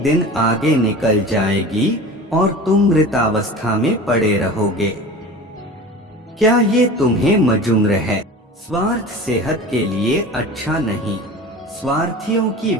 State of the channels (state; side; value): normal; both; correlation 0.36